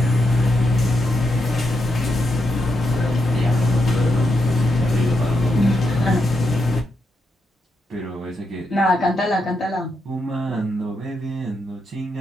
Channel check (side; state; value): both; normal; correlation 0.83